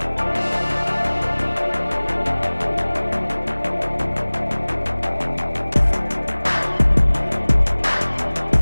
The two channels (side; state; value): both; inverted; correlation -1.00